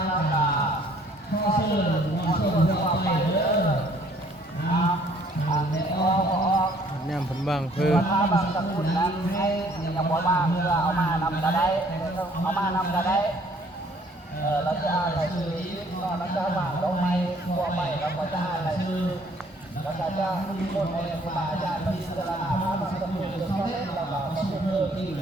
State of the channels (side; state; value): both; normal; correlation 0.60